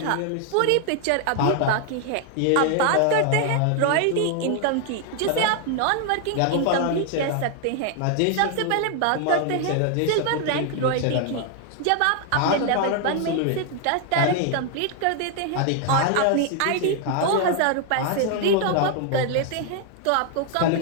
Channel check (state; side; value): different; both; correlation 0.00